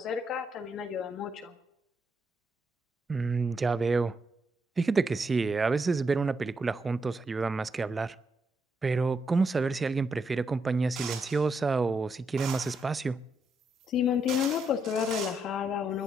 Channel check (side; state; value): both; normal; correlation 0.80